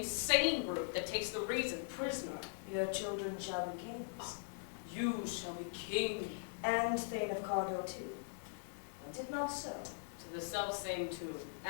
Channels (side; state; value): right; silent; 51 dB below the other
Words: brute that takes the reason prisoner? Your children shall be kings, You shall be king. and Thane of Cawdor too. I did not so. To the self-same tune